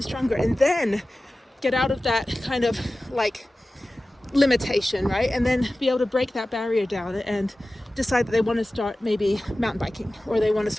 stronger, and then get out of that kind of like limitation, right? And then be able to break that barrier down and decide that they want to start maybe mountain biking, or they want to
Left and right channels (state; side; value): normal; both; correlation 0.96